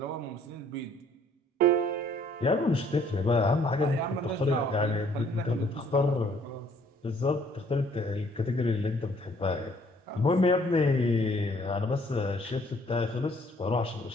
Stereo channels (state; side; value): normal; both; correlation 0.61